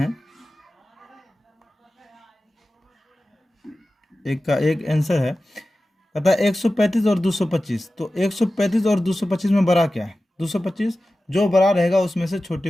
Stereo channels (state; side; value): normal; both; correlation 0.95